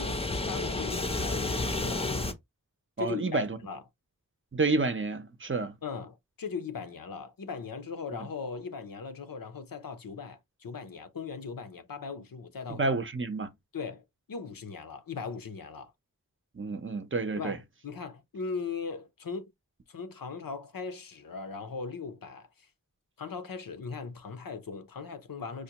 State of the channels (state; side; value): normal; both; correlation 0.17